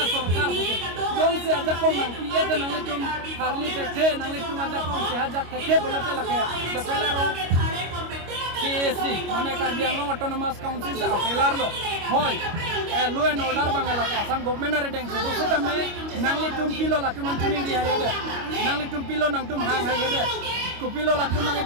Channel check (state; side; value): late; left; 25 ms